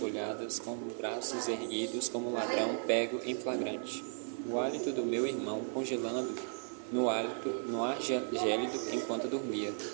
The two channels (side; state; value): left; silent; digital silence